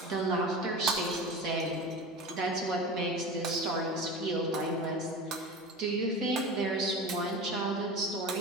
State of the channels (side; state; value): both; normal; correlation 0.31